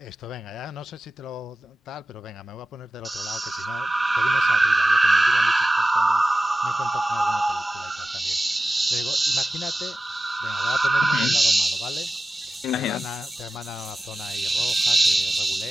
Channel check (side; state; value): both; normal; correlation 0.94